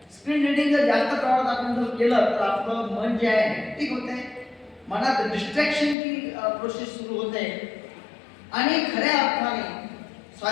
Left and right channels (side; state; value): right; drops out; at 6.0 s